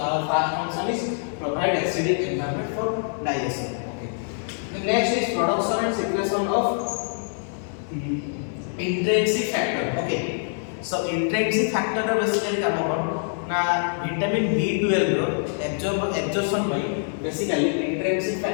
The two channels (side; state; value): right; silent; digital silence